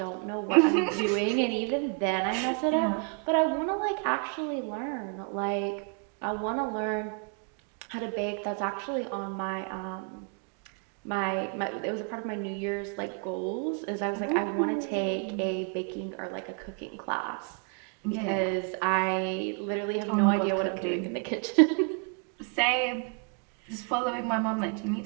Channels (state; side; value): quieter; left; 38.3 dB